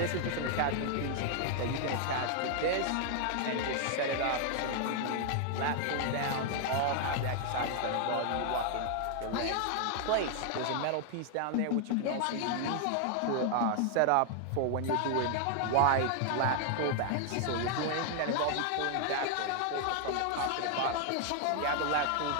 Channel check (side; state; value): both; different; correlation 0.00